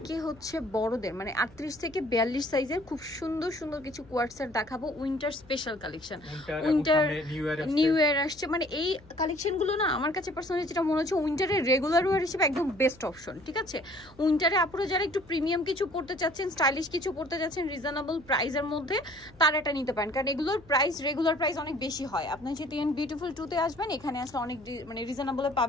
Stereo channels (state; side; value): noise; left; hum, 24 dB below the sound